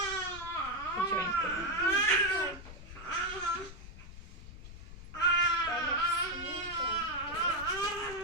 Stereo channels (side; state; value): left; noise; rumble, 14 dB below the sound